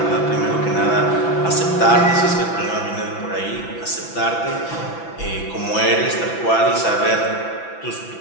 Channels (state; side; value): late; right; 6.0 ms